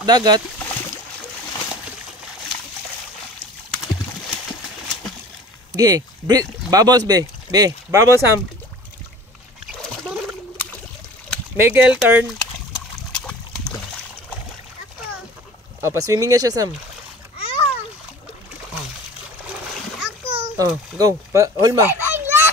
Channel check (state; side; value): normal; both; correlation 0.43